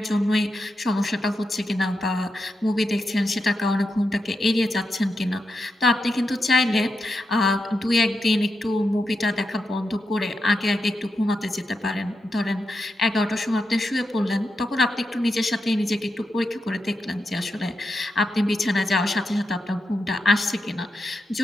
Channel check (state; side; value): normal; both; correlation 0.87